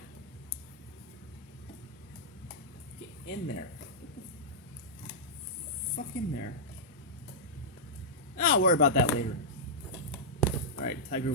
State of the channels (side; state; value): both; normal; correlation -0.11